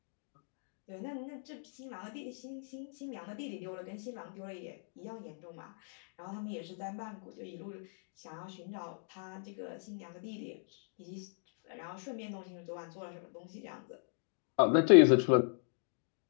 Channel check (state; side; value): silent; right; digital silence